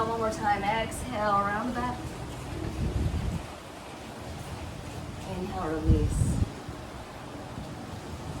1 more time, exhale, around the back. Inhale, release.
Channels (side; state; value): both; identical; correlation 1.00